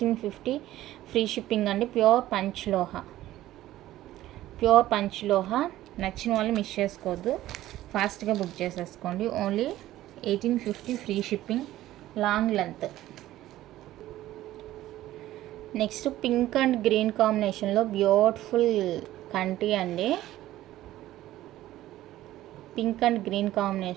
ఫ్రీ షిప్పింగ్ అండి. ప్యూర్ పంచ్లోహా. నచ్చిన వాళ్ళు మిస్ చేసుకోవద్దు, ఫాస్ట్గా బుక్ చేసేసుకోండి. Only 1850 free shipping, long length. Next pink and green కాంబినేషన్లో బ్యూటిఫుల్ కంటి అండి. పింక్ అండ్ గ్రీన్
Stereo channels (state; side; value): quieter; left; 14.7 dB